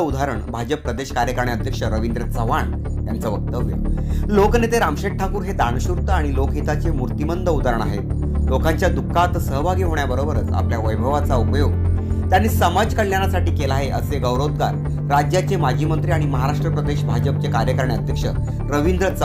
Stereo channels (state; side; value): identical; both; correlation 1.00